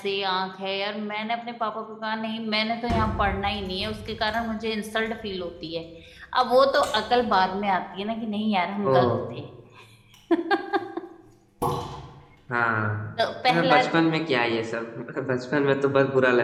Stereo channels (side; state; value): both; identical; correlation 1.00